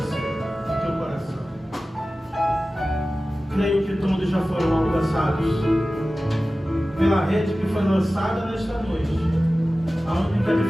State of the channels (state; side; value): normal; both; correlation 0.96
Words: no teu coração. Creio que todos já foram alcançados pela rede que foi lançada nesta noite. A única